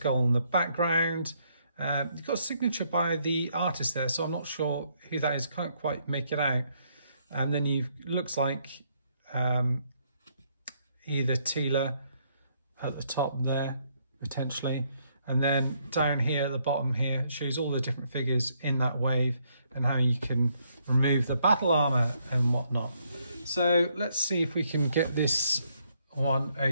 in the background. You've got a signature by the artist there, so I'm not sure who that is. Can't quite make it out. And then looks like either Teela at the top there, potentially. And then down here at the bottom here, it shows all the different figures in that wave and how you can remove the battle armor and whatnot. So let's see if we can get this one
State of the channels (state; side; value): inverted; both; correlation -0.72